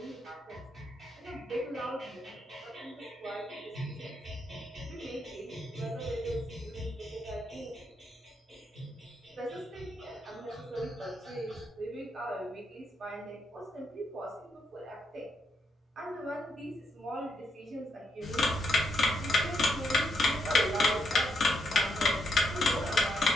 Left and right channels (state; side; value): normal; both; correlation 0.79